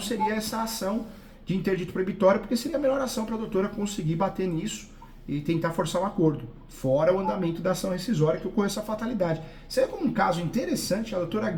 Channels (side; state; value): both; identical; correlation 1.00